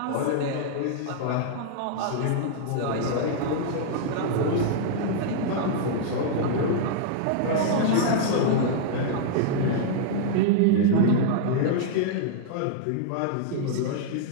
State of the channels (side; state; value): both; different; correlation -0.01